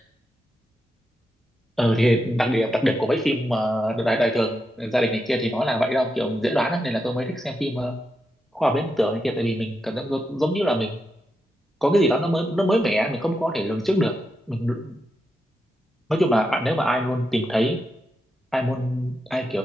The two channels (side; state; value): both; normal; correlation 0.85